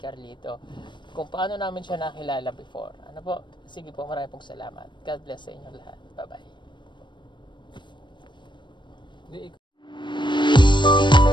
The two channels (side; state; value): right; late; 0.22 ms